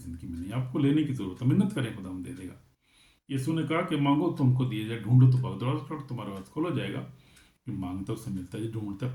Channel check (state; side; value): identical; both; correlation 1.00